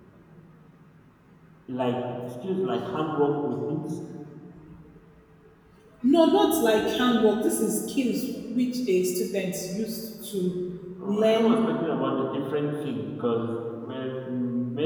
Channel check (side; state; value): both; identical; correlation 1.00